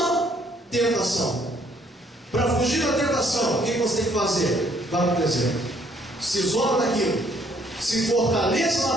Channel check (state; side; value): normal; both; correlation 0.64